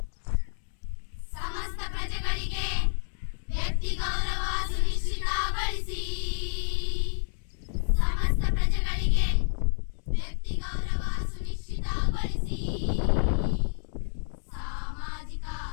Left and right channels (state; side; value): silent; right; digital silence